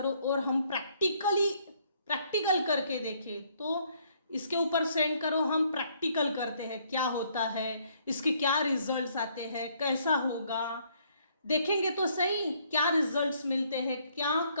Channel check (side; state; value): both; inverted; correlation -0.67